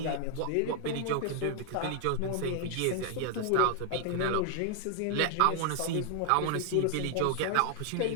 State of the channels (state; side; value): different; both; correlation 0.00